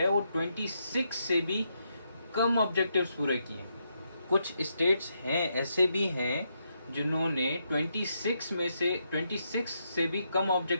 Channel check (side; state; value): both; inverted; correlation -0.80